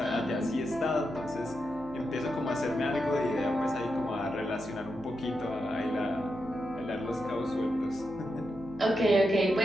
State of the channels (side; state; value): right; noise; hum, 19 dB below the sound